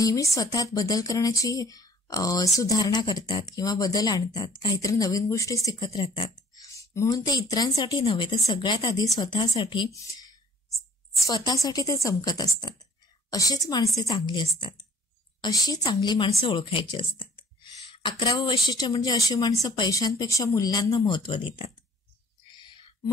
स्वतःत बदल करण्याची सुधारणा करतात किंवा बदल आणतात, काहीतरी नवीन गोष्टी शिकत राहतात. म्हणून ते इतरांसाठी नव्हे तर सगळ्यात आधी स्वतःसाठी ते चमकत असतात. अशीच माणसे चांगली असतात. अशी चांगली माणसं ओळखायची असतात. 11वं वैशिष्ट्य म्हणजे अशी माणसं पैशांपेक्षा मूल्यांना महत्व देतात.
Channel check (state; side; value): normal; both; correlation 0.55